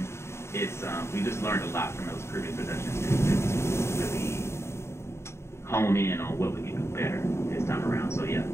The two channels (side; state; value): right; late; 0.13 ms